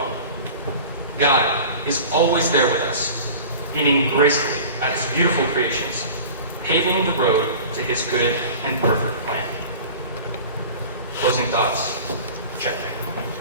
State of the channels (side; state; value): both; inverted; correlation -0.39